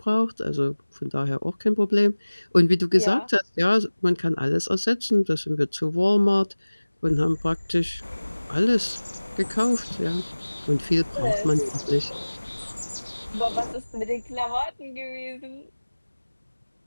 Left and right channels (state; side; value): inverted; both; correlation -1.00